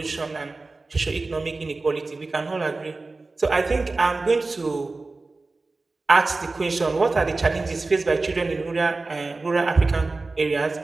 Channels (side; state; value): left; quieter; 3.5 dB